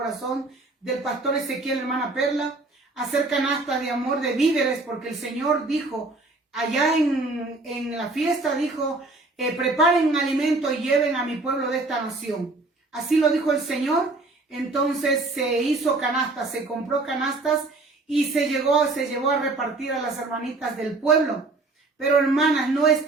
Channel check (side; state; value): left; quieter; 3.2 dB